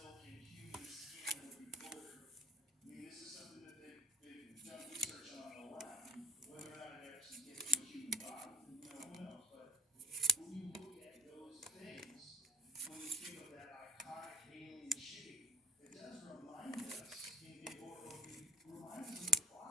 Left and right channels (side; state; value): both; normal; correlation 0.46